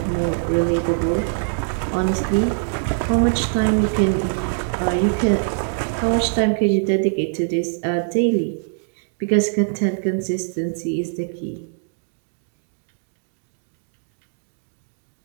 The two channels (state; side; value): silent; left; digital silence